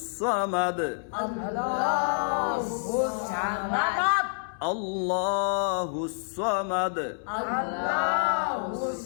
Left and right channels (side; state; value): right; silent; 59 dB below the other